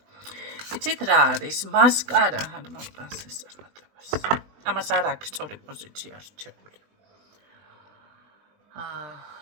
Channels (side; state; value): left; late; 20 ms